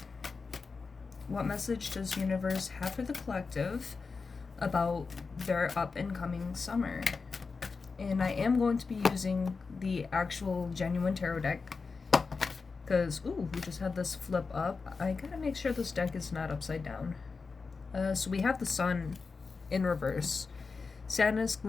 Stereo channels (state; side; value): quieter; right; 4.6 dB